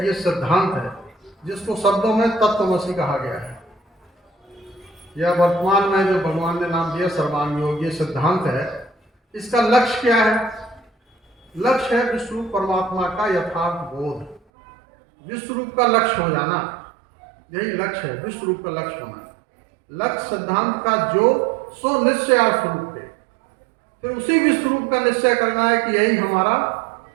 ये सिद्धांत है, जिसको शब्दों में तत्वमसि कहा गया है। यह वर्तमान में जो भगवान ने नाम दिया सर्वांग योग, ये सिद्धांत है। इसका लक्ष्य क्या है? लक्ष्य है विश्वरूप परमात्मा का यथार्थ बोध। विश्वरूप का लक्ष्य हो जाना, यही लक्ष्य है, विश्वरूप का लक्ष्य होना। लक्ष्य सिद्धांत का जो सो निश्चय स्वरूप है, फिर उसी विश्वरूप का निश्चय करना है कि यही हमारा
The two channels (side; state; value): left; drops out; at 14.4 s